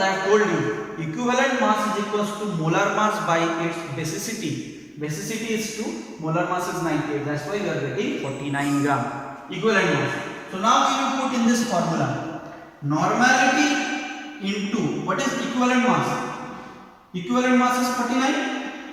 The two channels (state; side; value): identical; both; correlation 1.00